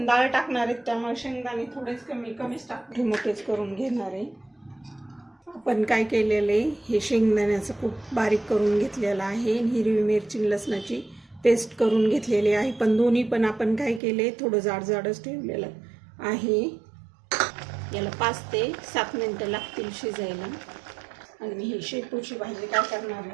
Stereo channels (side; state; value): left; drops out; at 14.0 s